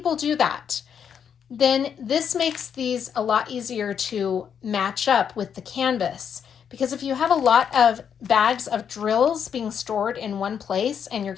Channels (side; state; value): right; quieter; 7.8 dB